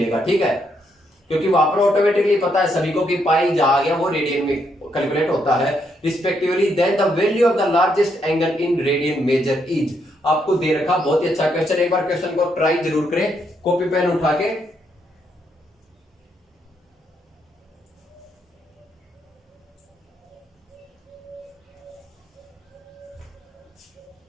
ठीक है, क्योंकि वहां पर ऑटोमेटिकली पता है सभी को कि पाई जहां गया वो रेडियन में कैलकुलेट होता है respectively. Then the value of the largest angle in radian measure is, आपको दे रखा बहुत ही अच्छा क्वेश्चन। एक बार क्वेश्चन को ट्राई जरूर करें, कॉपी पेन उठा के।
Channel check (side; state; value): both; normal; correlation 0.76